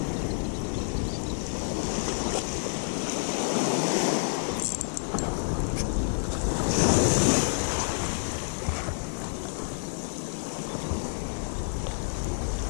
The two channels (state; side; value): silent; right; digital silence